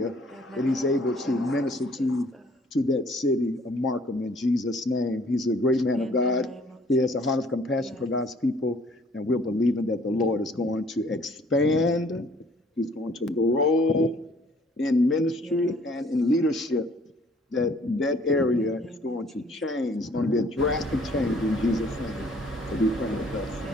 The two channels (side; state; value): both; normal; correlation 0.58